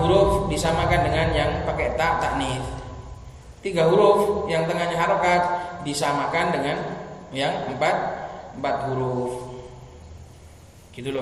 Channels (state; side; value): identical; both; correlation 1.00